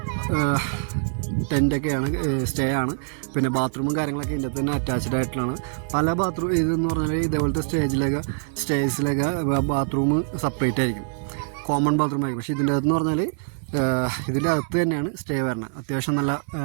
ടെൻറ്റൊക്കെയാണ്, സ്റ്റേ ആണ്. പിന്നെ ബാത്റൂമും കാര്യങ്ങളൊക്കെ ഇതിൻ്റെ തന്നെ അറ്റാച്ച്ഡ് ആയിട്ടുള്ളതാണ്. പല ബാത്റൂം ഇതെന്ന് പറഞ്ഞാൽ ഇതേപോലത്തെ സ്റ്റേജിലൊക്കെ ബാത്റൂം സെപ്പറേറ്റ് ആയിരിക്കും, കോമൺ ബാത്റൂം ആയിരിക്കും. പക്ഷേ ഇതിൻ്റെ അകത്തെന്ന് പറഞ്ഞാൽ ഇതിൻ്റെ അകത്ത് തന്നെയാണ് സ്റ്റേ വരുന്നത്. അത്യാവശ്യം നല്ല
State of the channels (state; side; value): silent; left; 60 dB below the other